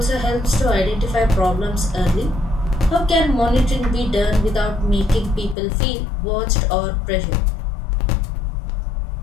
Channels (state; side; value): drops out; right; at 5.6 s